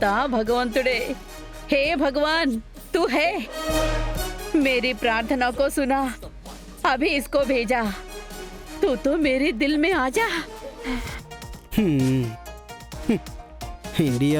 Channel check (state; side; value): identical; both; correlation 1.00